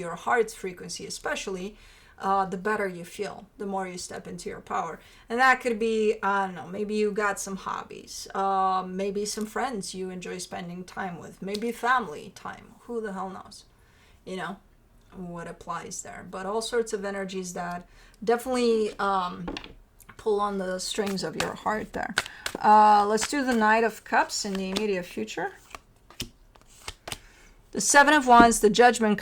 heart's frequency especially, the better you feel, the more you step into your power. And that could be, I don't know, maybe you got some hobbies, maybe some friends you enjoy spending time with, maybe family time, who the hell knows, you know, what applies there. But all sorts of energies that definitely pull on the strings of your heart there. Let's do the Knight of Cups in the immediate future. The Seven of Wands, the Judgment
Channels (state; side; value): identical; both; correlation 1.00